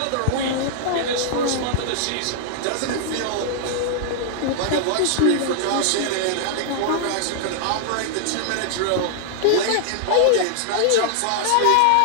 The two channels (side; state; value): both; different; correlation -0.01